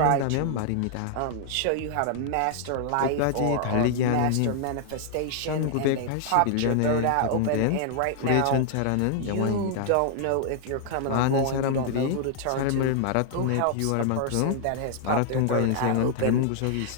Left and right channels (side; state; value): both; different; correlation 0.00